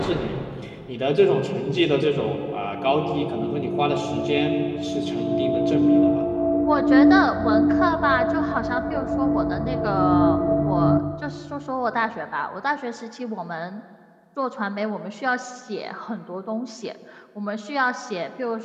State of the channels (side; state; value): both; identical; correlation 1.00